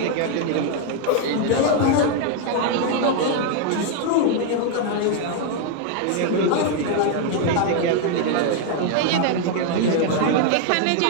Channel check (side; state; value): both; different; correlation 0.00